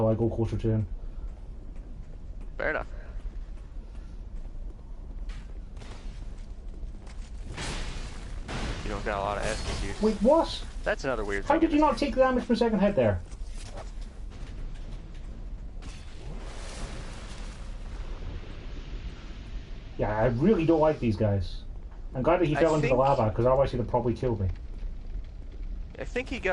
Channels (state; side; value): identical; both; correlation 1.00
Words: I go closer to him. Fair enough. You don't got a lot of Estus use. Wait, what? That's another weird How thing. did you not take the damage from second hit there? Yeah, I really don't like these guys. I'm glad that he fell into the lava, because otherwise he'd have probably killed me. I think he